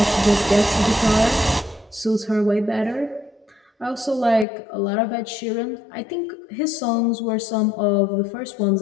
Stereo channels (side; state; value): right; drops out; at 4.5 s